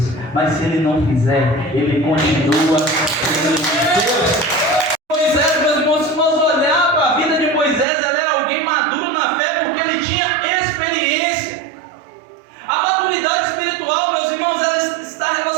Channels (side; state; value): left; drops out; at 7.9 s